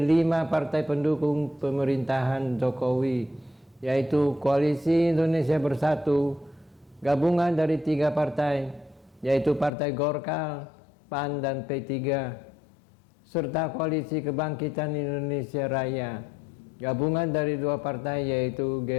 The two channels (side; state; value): right; drops out; at 9.7 s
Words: 5 partai pendukung pemerintahan Jokowi, yaitu Koalisi Indonesia Bersatu, gabungan dari 3 partai, yaitu Partai Golkar, PAN, dan P3, serta Koalisi Kebangkitan Indonesia Raya, gabungan dari 2 partai, yaitu